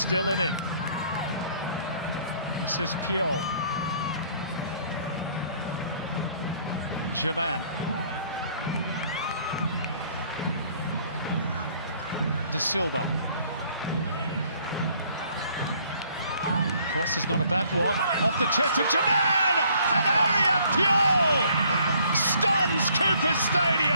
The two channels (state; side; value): inverted; both; correlation -0.61